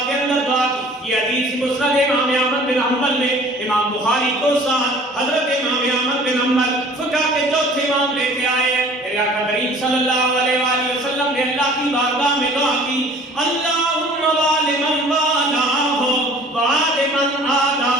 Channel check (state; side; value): normal; both; correlation 0.49